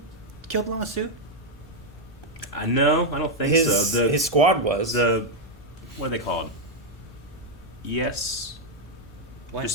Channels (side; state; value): both; normal; correlation 0.01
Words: killed Lama Su? No, I don't think so. His squad was. What are they called? Yes. What? Just